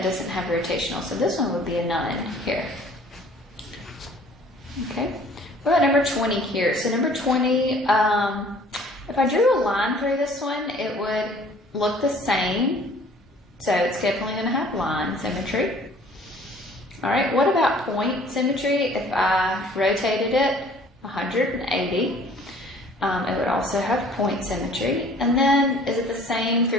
doesn't have rotational. So this one would be a none here. Okay. What about number 20 here? So number 20, if I drew a line through this one, it would look the same. So it's definitely going to have line symmetry. All right. What about point symmetry? If I rotated it 180, it would also have point symmetry. And then is it the same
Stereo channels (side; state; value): both; normal; correlation 0.53